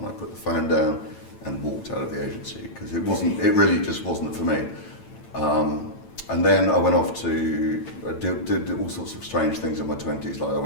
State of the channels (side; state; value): right; late; 8.9 ms